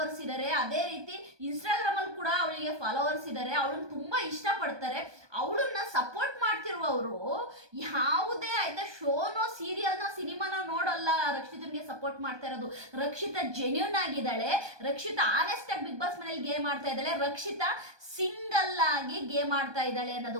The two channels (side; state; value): left; late; 1.2 ms